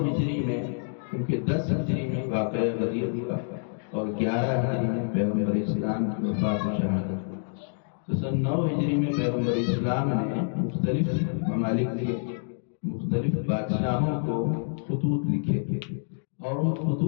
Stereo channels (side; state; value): right; silent; digital silence